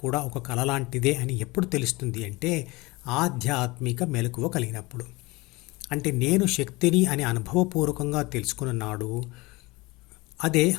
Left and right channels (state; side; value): quieter; right; 22.9 dB